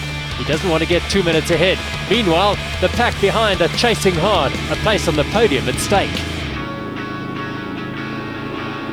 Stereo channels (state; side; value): identical; both; correlation 1.00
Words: He doesn't want to get 2 minutes ahead. Meanwhile, the pack behind are chasing hard, a place on the podium at stake.